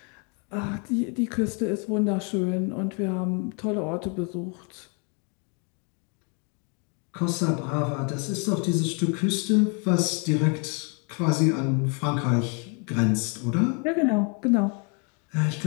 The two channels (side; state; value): right; quieter; 36.5 dB